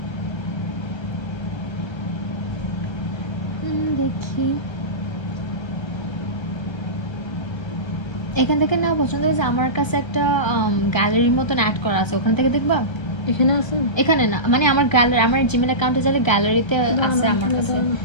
দেখি এখান থেকে নেওয়া পছন্দ হয়েছে। আমার কাছে একটা গ্যালারির মতন অ্যাড করা আছে, ওখান থেকে দেখবা। এখানে আছে? এখানে না, মানে আমার গ্যালারি, আমার জিমেল অ্যাকাউন্টে যাবে, গ্যালারিতে আছে আমার কাছে।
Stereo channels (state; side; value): late; right; 1.3 ms